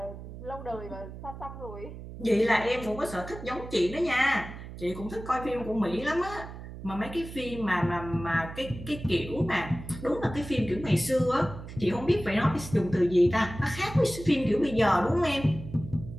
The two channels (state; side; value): noise; right; hum, 12 dB below the sound